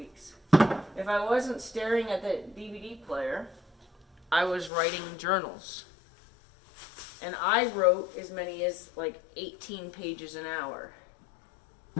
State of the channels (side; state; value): right; drops out; at 4.7 s